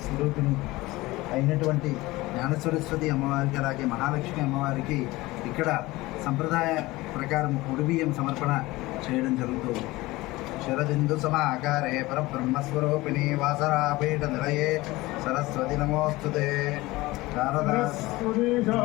స్వరూపిణి అయినటువంటి జ్ఞానసరస్వతి అమ్మవారికి అలాగే మహాలక్ష్మి అమ్మవారికి ఇక్కడ సంప్రదాయ ప్రకారం ఉడిబియ్యం సమర్పణ చేయడం జరుగుతుంది. శరదిందు సమాకారే పరబ్రహ్మస్వరూపిణి వాసరాపీఠ నిలయే సరస్వతి నమోస్తుతే.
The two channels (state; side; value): quieter; right; 19.9 dB